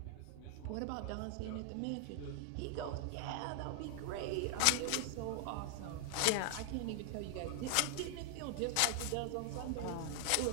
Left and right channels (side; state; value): both; different; correlation 0.00